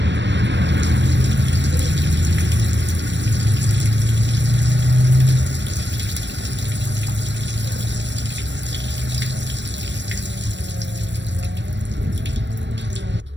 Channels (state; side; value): late; left; 0.53 ms